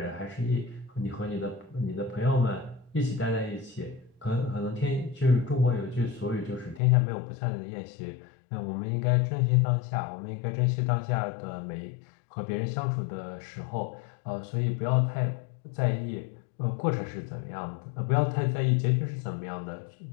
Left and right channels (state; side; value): drops out; right; at 6.8 s